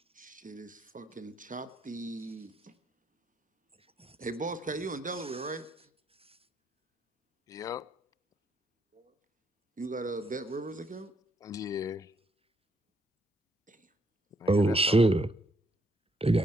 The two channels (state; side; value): normal; both; correlation 0.73